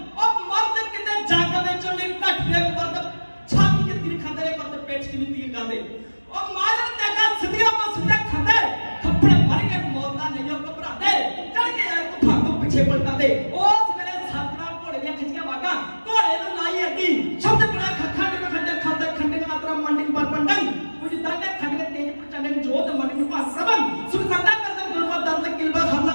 ਮਰਦ ਕਿਤੇ ਜੱਗ ਵਿੱਚ ਨਹੀਂ ਘੱਟਦੇ ਮਰਦ ਛਾਤੀ ਤੇ ਤੀਰ ਖਾਂਦੇ ਨੇ ਮਰਦ ਪੇਟ 'ਚ ਨਹੀਂ ਤੀਰ ਖਾਂਦੇ ਉਹ ਮਾਰਨ ਤੇ ਕਾ ਸਿੱਧੀਆਂ ਤੋਂ ਸਿੱਧੇ ਖਾਂਦੇ मन पास सबन सुख संता करदम गुरबत दर्द किलबा हल्ला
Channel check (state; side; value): inverted; both; correlation -1.00